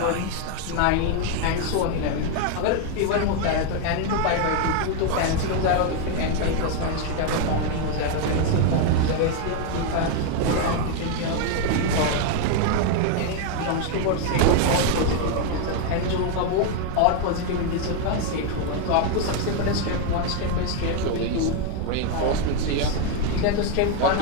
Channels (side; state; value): both; different; correlation 0.01